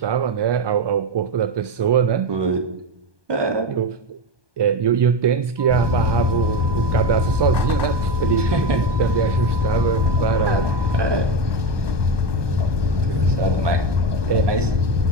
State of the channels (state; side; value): late; left; 1.2 ms